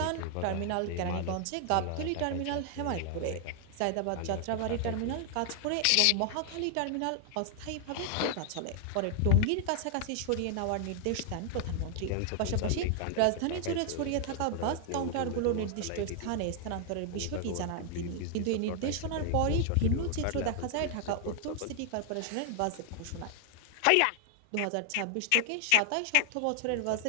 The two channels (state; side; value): different; both; correlation 0.00